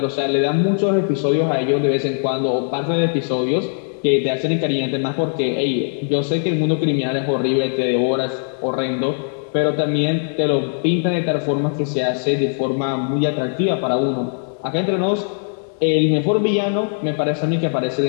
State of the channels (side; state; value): right; silent; digital silence